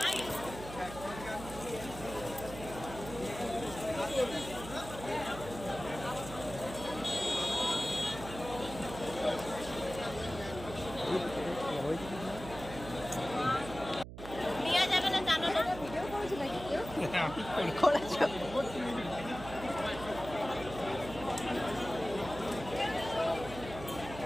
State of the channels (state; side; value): noise; right; hum, 12 dB below the sound